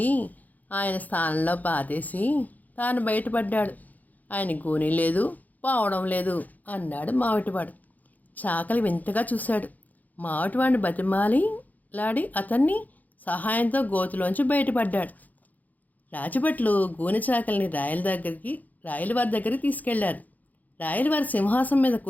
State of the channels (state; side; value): late; right; 0.081 ms